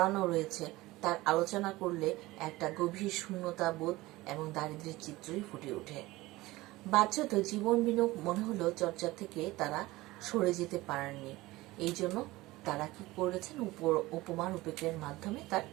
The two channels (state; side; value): quieter; left; 19.3 dB